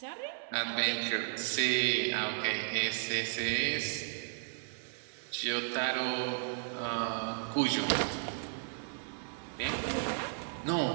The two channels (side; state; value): left; silent; digital silence